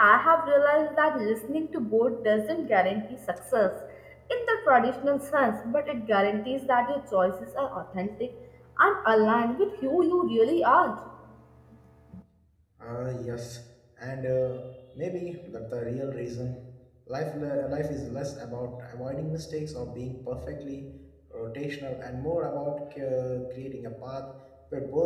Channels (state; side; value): identical; both; correlation 1.00